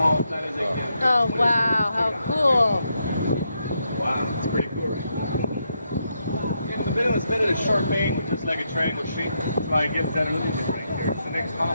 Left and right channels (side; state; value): both; inverted; correlation -0.80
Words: that is again. Oh, wow, how cool. Wow, it's pretty cool, right? Yeah, the building was made of a sharp angle, just like a triangle shape. That's why it gives that illusion right here. It's the next